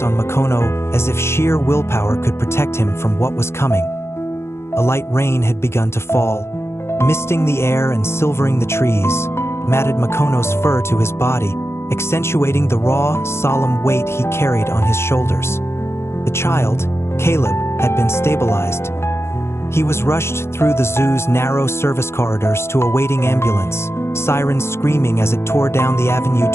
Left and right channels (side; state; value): right; late; 0.12 ms